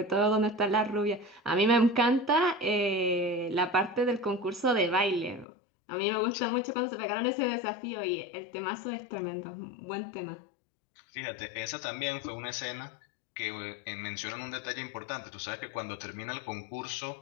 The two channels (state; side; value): drops out; right; at 5.5 s